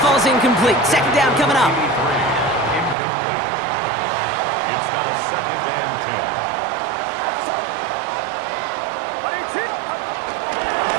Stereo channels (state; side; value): drops out; left; at 3.0 s